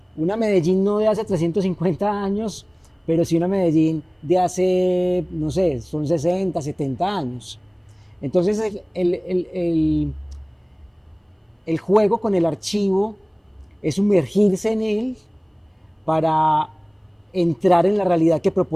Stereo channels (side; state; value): both; identical; correlation 1.00